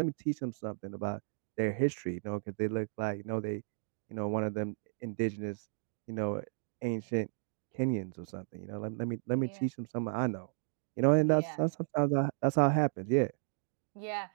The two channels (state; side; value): silent; left; digital silence